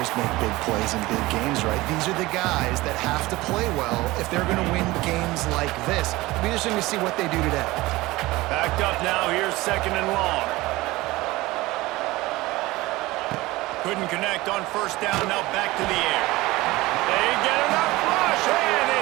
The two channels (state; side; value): quieter; left; 19.6 dB